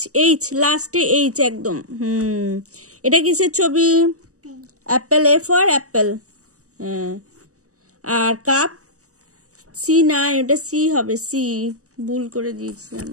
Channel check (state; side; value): late; left; 0.66 ms